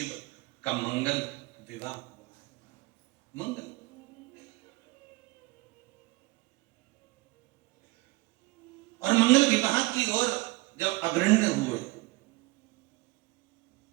का मंगल विवाह हुआ है। मंगल, और मंगल विवाह की ओर जब अग्रण्य हुए,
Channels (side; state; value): left; quieter; 22.6 dB